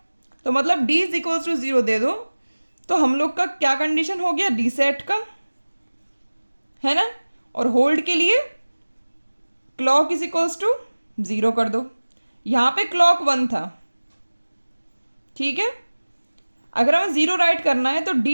तो मतलब डी इज इक्वल्स टू 0 दे दो। तो हम लोग का क्या कंडीशन हो गया, डी सेट का, है ना। और होल्ड के लिए क्लॉक इज इक्वल्स टू 0 कर दो। यहाँ पे क्लॉक 1 था, ठीक है। अगर हमें 0 राइट करना है तो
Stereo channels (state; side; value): inverted; both; correlation -1.00